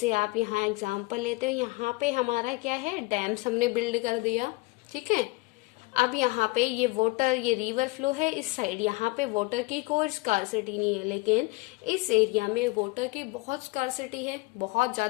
आप यहाँ example लेते हो, यहाँ पे हमारा क्या है, डैम्स हमने बिल्ड कर दिया, ठीक है. अब यहाँ पे ये वाटर, ये रिवर फ्लो है इस साइड, यहाँ पे वाटर की कोई स्कार्सिटी नहीं है, लेकिन इस एरिया में वाटर की बहुत स्कार्सिटी है, बहुत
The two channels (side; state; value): right; quieter; 24.0 dB